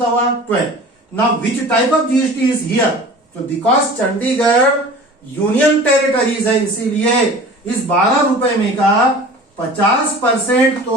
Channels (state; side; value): normal; both; correlation 0.41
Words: हुआ? 12। Now which type of GST is here? तो बिकॉज चंडीगढ़ यूनियन टेरिटरीज है, इसीलिए इस 12 रुपए में का 50%